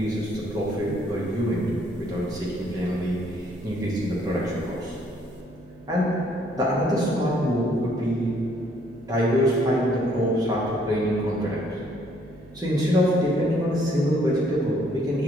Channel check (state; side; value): noise; right; hum, 23 dB below the sound